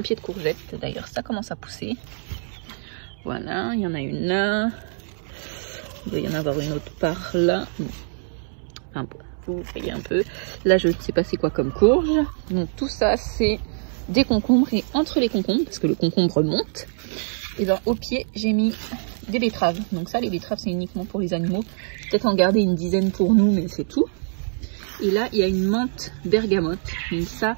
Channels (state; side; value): silent; left; 63 dB below the other